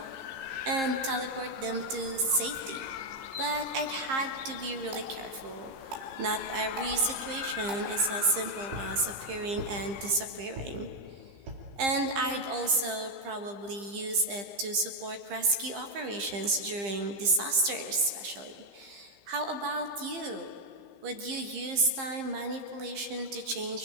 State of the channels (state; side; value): late; left; 15 ms